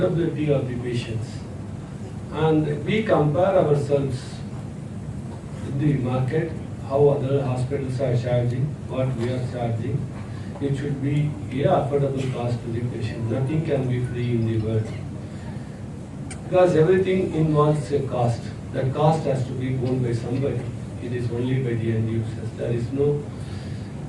of the patients. And we compare ourselves with the market, how other hospitals are charging, what we are charging. It should be a affordable cost to the patient. Nothing can be free in the world. Because everything involves a cost. That cost has to be borne by somebody. It is only by the end users. There is no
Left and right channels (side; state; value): both; identical; correlation 1.00